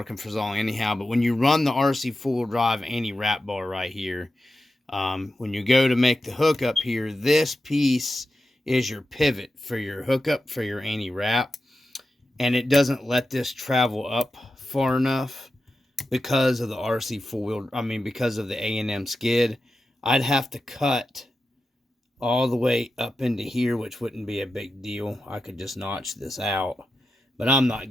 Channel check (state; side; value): normal; both; correlation 0.91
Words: for so long anyhow. But when you run the RC 4-wheel drive anti-wrap bar right here, when you go to make the hookup here, this piece is your pivot for your hookup for your anti-wrap, and it doesn't let this travel up far enough because of the RC 4-wheel, because of the A&M skid. I'd have to cut all the way up into here, which wouldn't be a big deal. I could just notch this out, but I'm not